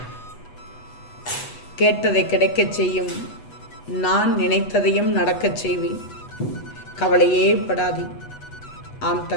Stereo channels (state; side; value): late; right; 8.1 ms